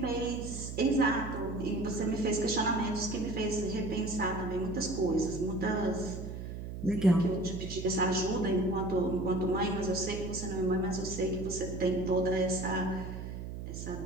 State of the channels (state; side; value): noise; right; hum, 8 dB below the sound